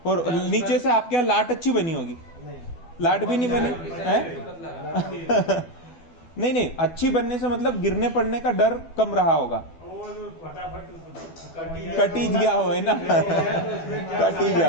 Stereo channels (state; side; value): late; right; 12 ms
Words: और नीचे से आपके यहाँ लाट अच्छी बनी होगी, नहीं, लाट भी नहीं बनी है। नहीं अच्छी बनने से मतलब गिरने पड़ने का डर कम रहा होगा, और फटाफट कटी गया हो, है ना। कटी